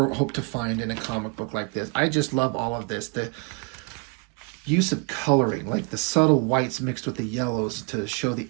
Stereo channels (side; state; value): left; quieter; 31.2 dB